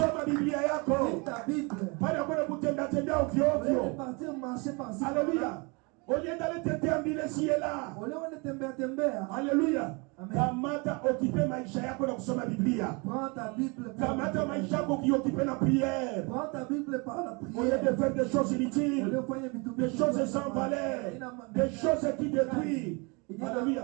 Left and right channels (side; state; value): left; quieter; 29.8 dB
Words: Biblia yako. Pale kwa kutembea tembea ovyo ovyo. Alléluia. Au lieu d'aller te déambuler ici et là. Alléluia. Kamata occuper maisha yako na kusoma Biblia. Kamata maisha yako kuoccuper la prière. Au lieu de faire des choses inutiles, des choses sans valeur, des choses qui détruisent.